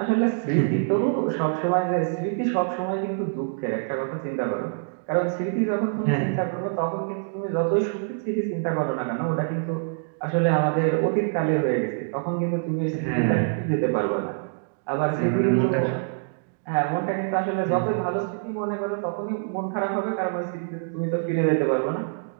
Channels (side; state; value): left; silent; digital silence